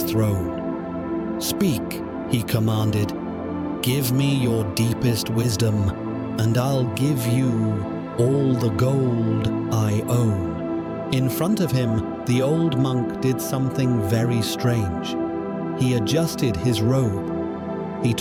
throne. "Speak," he commanded. "Give me your deepest wisdom, and I'll give you all the gold I own." In front of him, the old monk did something very strange. He adjusted his robe. He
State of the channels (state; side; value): identical; both; correlation 1.00